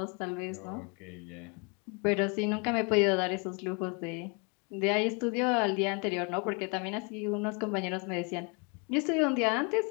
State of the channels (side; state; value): right; quieter; 33.7 dB